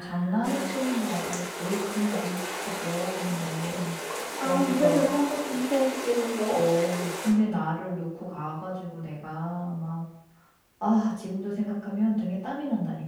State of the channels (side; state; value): both; identical; correlation 1.00